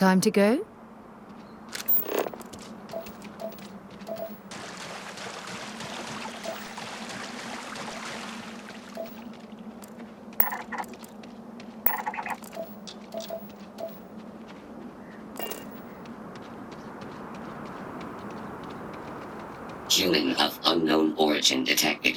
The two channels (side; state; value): both; identical; correlation 1.00